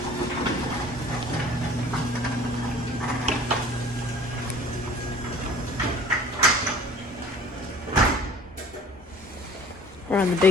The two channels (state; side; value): normal; both; correlation 0.47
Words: We're on the